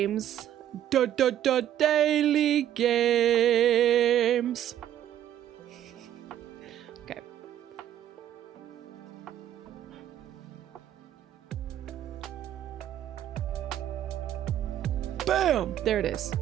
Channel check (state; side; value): quieter; left; 11.3 dB